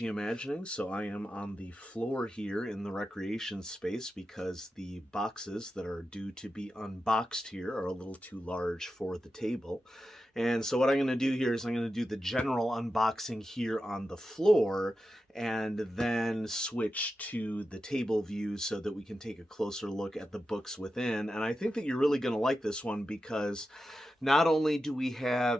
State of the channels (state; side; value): normal; both; correlation 0.90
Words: Imagining. So I am on the floor here in the recreation space because the boxes that are due to be unboxed here are a little too large for the table. And so what I'm going to do here is I'm going to do the general unboxing here on the floor and then switch to the table view so that we can take a closer look at the books within. And I think that you're really going to like this one because not only do we